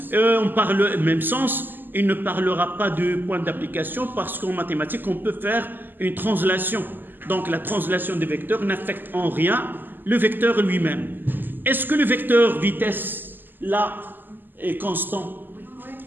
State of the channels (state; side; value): late; left; 0.090 ms